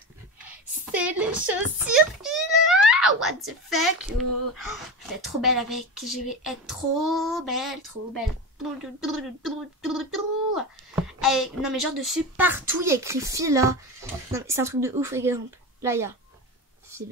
C'est les chaussures Fila. What the fuck. Oh, je vais être trop belle avec. Je vais être trop belle, trop belle. Non mais genre dessus, partout, il y a écrit Fila. Non mais c'est un truc de ouf, exemple. Là, il y a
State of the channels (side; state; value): both; normal; correlation 0.24